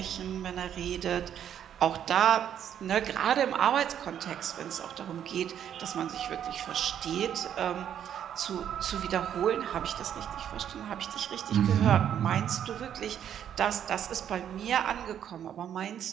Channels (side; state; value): left; quieter; 9.6 dB